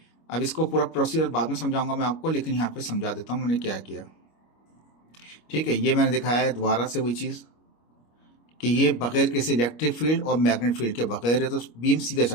अब इसको पूरा प्रोसीजर बाद में समझाऊंगा मैं आपको, लेकिन यहाँ पे समझा देता हूँ मैंने क्या किया, ठीक है। ये मैंने दिखाया है दोबारा से वही चीज़ कि ये बगैर किसी इलेक्ट्रिक फील्ड और मैग्नेट फील्ड के बगैर है, तो बीम सीधा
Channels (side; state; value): right; late; 25 ms